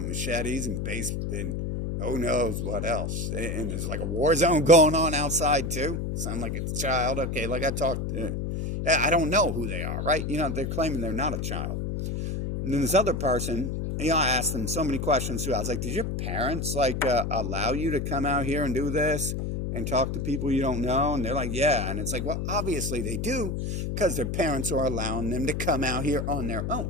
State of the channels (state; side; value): noise; left; hum, 2 dB below the sound